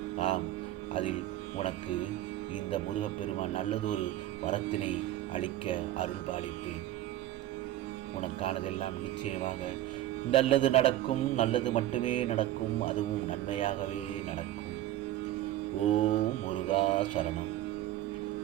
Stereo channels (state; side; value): quieter; left; 14.1 dB